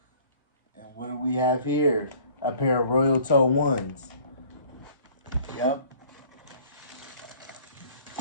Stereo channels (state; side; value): inverted; both; correlation -0.53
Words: and what do we have here? A pair of Royal Toe 1s. Yep.